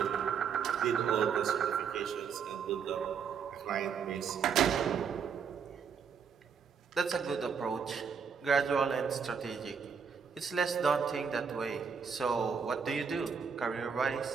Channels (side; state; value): left; quieter; 6.5 dB